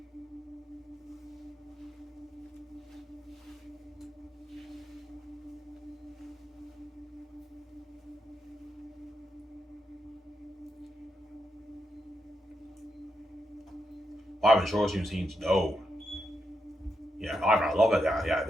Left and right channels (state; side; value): normal; both; correlation 0.83